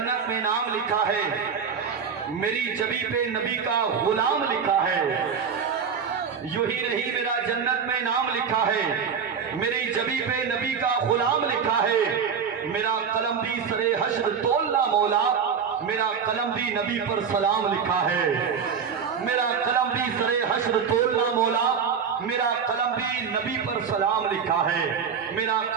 में नाम लिखा है, मेरी जबी पे नबी का गुलाम लिखा है। यूं ही नहीं मेरा जन्नत में नाम लिखा है, मेरी जबी पे नबी का गुलाम लिखा है। मेरा कलम भी सरे हश्र तोलना मौला, मेरा कलम भी नबी पर सलाम लिखा है। मेरा कलम भी सरे हश्र तोलना मौला, मेरा कलम भी नबी पर सलाम लिखा है। मेरा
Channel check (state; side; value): quieter; left; 6.6 dB